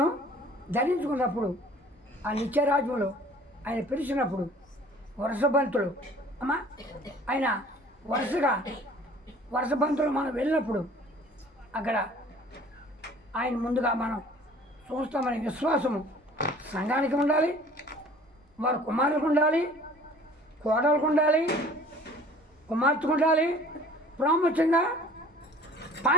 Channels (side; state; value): both; normal; correlation 0.50